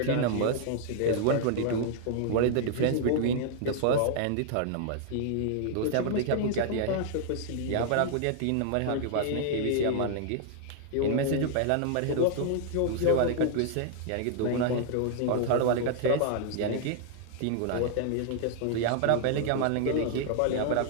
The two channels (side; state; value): both; different; correlation -0.01